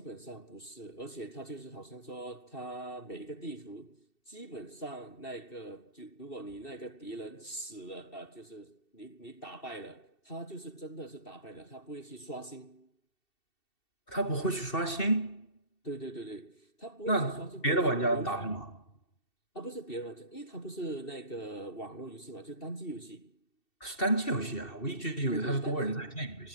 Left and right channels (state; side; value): late; right; 2.7 ms